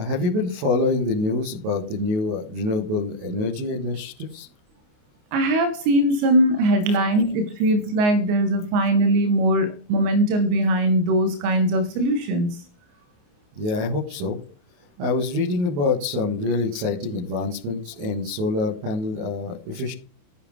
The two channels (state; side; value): late; left; 28 ms